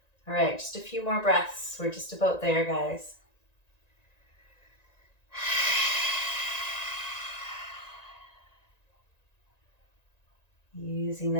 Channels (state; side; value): late; right; 1.9 ms